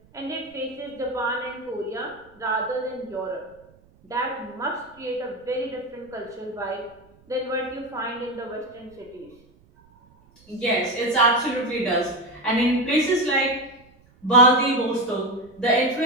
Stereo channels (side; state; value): right; noise; rumble, 29 dB below the sound